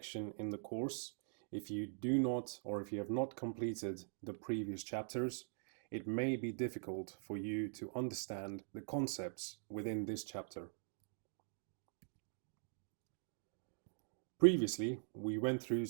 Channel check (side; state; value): left; silent; digital silence